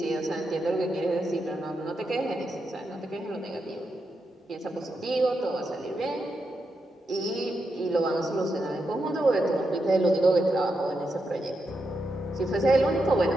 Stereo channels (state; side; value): normal; both; correlation 0.85